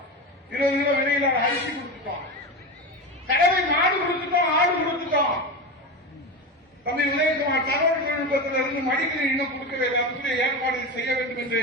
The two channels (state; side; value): normal; both; correlation 0.22